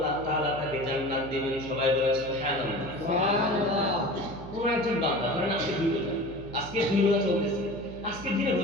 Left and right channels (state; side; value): noise; right; hum, 14 dB below the sound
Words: তাআলা তাকে জান্নাত দিবেন। সবাই বলেন সুবহানাল্লাহ। সুবহানাল্লাহ। কোন একজন বান্দা ধরেন আজকে 2 রোজা চলতেছে, আজকের দিনে